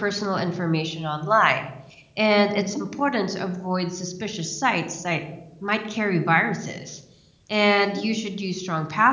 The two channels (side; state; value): both; identical; correlation 1.00